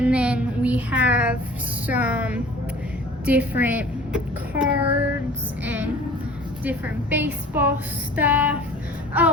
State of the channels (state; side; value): normal; both; correlation 0.45